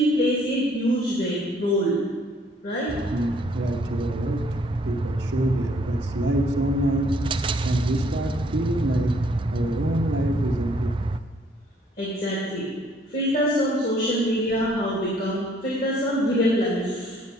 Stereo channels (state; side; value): normal; both; correlation 0.63